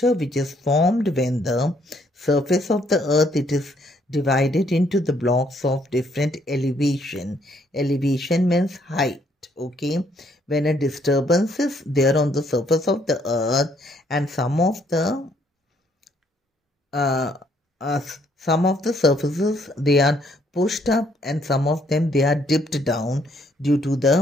which is formed when the surface of the earth, it is divided into the blocks of different elevation. Elevation means height. Okay, when a disturbance is there on the surface of the earth and some of the surfaces, they are pushed up and some of them, they are dipped down due to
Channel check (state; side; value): normal; both; correlation 0.68